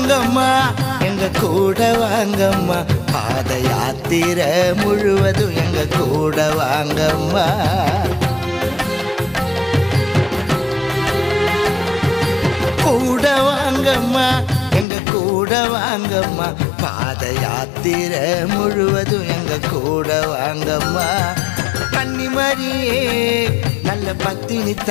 வாங்கம்மா எங்க கூட வாங்கம்மா பாத யாத்திரை முழுவதும் எங்க கூட வாங்கம்மா கூட வாங்கம்மா எங்க கூட வாங்கம்மா பாத யாத்திரை முழுவதும் எங்க கூட வாங்கம்மா கன்னிமரியே நல்ல பத்தினி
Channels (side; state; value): right; drops out; at 14.9 s